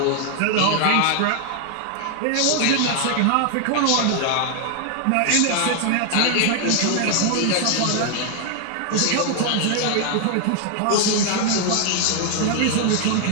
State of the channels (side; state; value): both; different; correlation 0.00